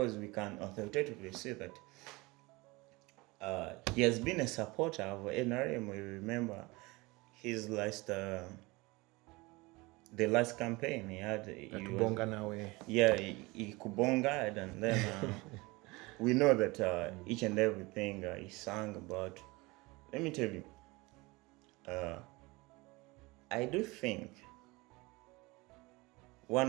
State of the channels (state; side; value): quieter; left; 23.5 dB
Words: we can authoritatively say that he has been a supporter of NRM. We remember his last the last campaign he had. He kubonga, and then we know that each and everything he sang about. Let me tell you, I do think